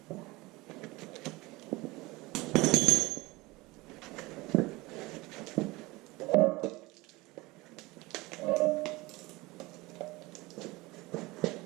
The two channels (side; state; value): left; quieter; 21.9 dB